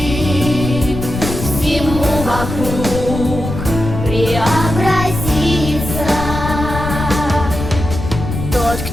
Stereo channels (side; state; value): left; noise; rumble, 6 dB below the sound